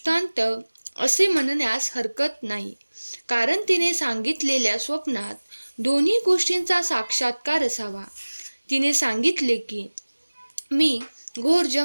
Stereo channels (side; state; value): both; inverted; correlation -1.00